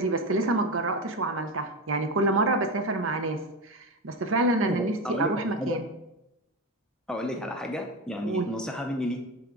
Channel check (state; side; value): normal; both; correlation 0.19